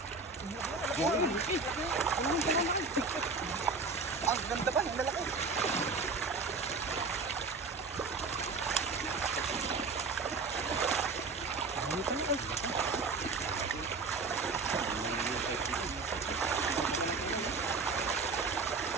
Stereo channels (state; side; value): quieter; left; 4.1 dB